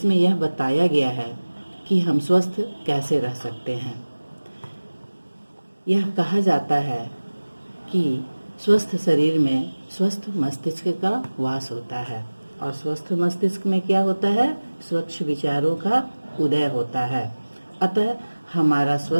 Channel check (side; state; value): both; inverted; correlation -1.00